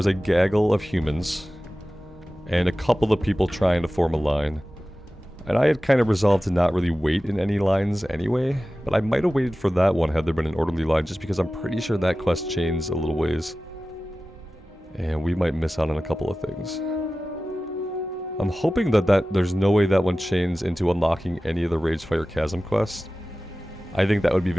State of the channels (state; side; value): normal; both; correlation 0.96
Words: a gaggle of humans and a couple of people trying to form a line. And I had kind of resolved to not really wait in any lines anyway, but I might have waited for that one had there been an orderly line, just because I'm pretty sure that quest chains a little ways. And we might miss out on a couple of things. I'm hoping that there's no way that one chains into unlocking any of the Ragefire Chasm quests. I think that would be